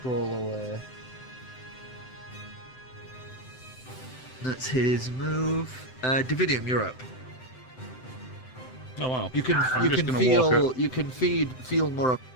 away. That's his move. Dividium, you're up. Oh wow. You can I'm you just can gonna walk feel you can feel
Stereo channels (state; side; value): late; right; 7.8 ms